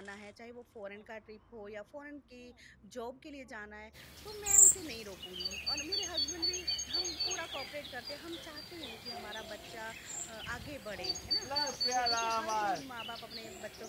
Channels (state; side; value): identical; both; correlation 1.00